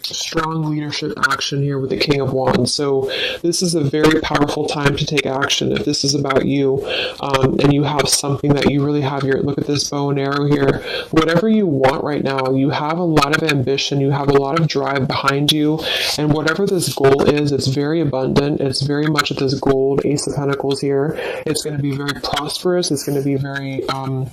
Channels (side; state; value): both; identical; correlation 1.00